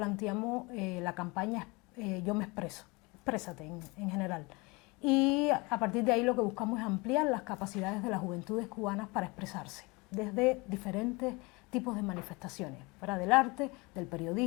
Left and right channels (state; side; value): quieter; right; 26.0 dB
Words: la campaña Yo me expreso, exprésate en general. Y a partir de ahí lo que buscamos es ampliar las capacidades de las juventudes cubanas para expresarse desde diferentes tipos de manifestaciones, fuera del arte, del